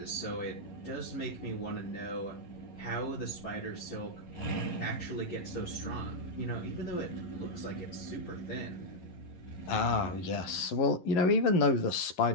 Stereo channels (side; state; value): right; late; 11 ms